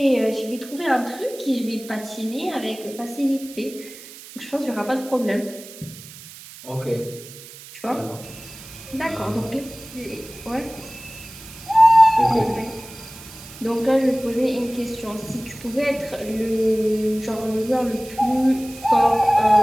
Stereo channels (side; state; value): right; noise; hiss, 17 dB below the sound